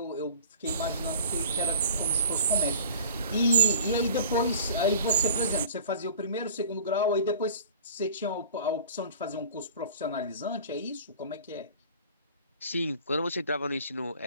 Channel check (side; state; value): both; inverted; correlation -0.44